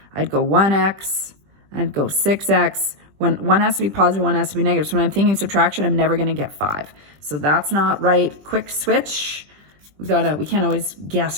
I'd go 1x, I'd go 6x. When 1 has to be positive, 1 has to be negative. So when I'm thinking subtraction, I'm never going to get 5. So that's not right. Quick switch. We can't always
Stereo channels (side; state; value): left; late; 20 ms